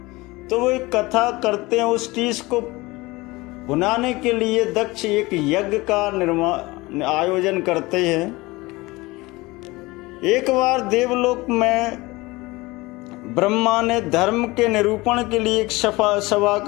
तो वो एक कथा करते हैं, उस टीस को भुनाने के लिए दक्ष एक यज्ञ का आयोजन करते हैं। एक बार देवलोक में ब्रह्मा ने धर्म के निरूपण के लिए एक सभा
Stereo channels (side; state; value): right; quieter; 21.7 dB